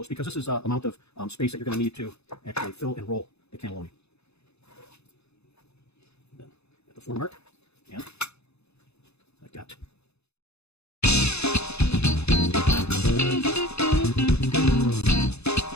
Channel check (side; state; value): right; late; 0.80 ms